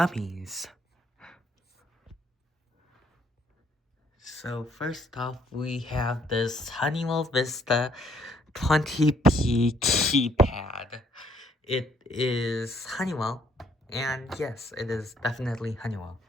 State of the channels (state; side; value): normal; both; correlation 0.67